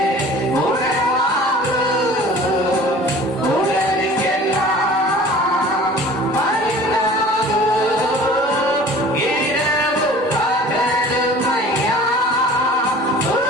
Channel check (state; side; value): normal; both; correlation 0.45